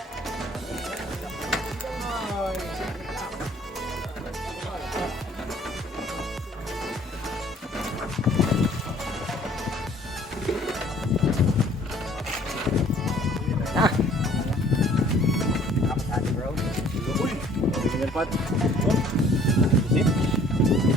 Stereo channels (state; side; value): normal; both; correlation 0.56